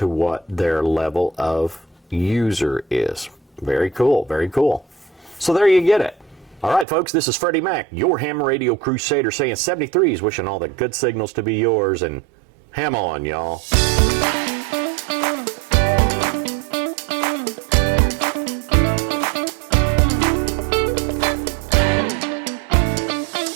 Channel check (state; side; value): drops out; left; at 6.9 s